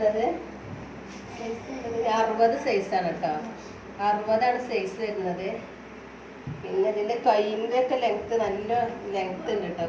60 സൈസാണ് കേട്ടോ. 60ആണ് സൈസ് വരുന്നത്. പിന്നെ ഇതിൻ്റെ കൈയിൻ്റെ ഒക്കെ ലെങ്ത്ത് നല്ല ലെങ്ത്ത് ഉണ്ട് കേട്ടോ.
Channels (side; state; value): both; identical; correlation 1.00